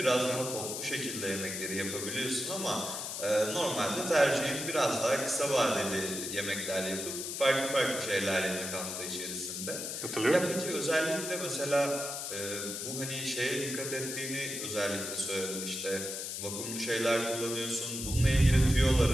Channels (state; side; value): noise; left; hiss, 5 dB below the sound